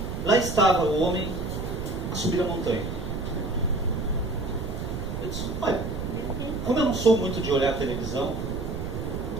lá estava o homem a subir a montanha. Eu disse, olha, como eu não sou muito de olhar a televisão,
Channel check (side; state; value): right; noise; rumble, 5 dB below the sound